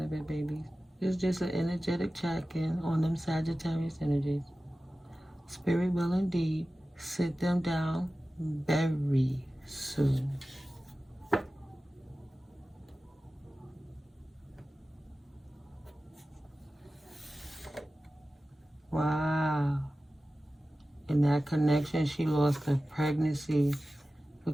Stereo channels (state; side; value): normal; both; correlation 0.95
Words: of it, babies. It's just an energetic check-in on them Sagittarius energies. Spirit will indeed sit them down very soon. Wow. In that connection, she lost her pregnancy